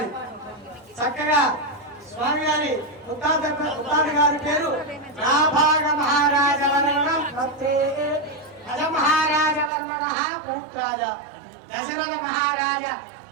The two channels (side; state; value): left; drops out; at 9.7 s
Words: చక్కగా స్వామి గారి ముత్తాత గారి పేరు నాభాగ మహారాజ వర్ణం భక్తే అజ మహారాజ వర్మణ పుత్రాజ దశరథ మహారాజ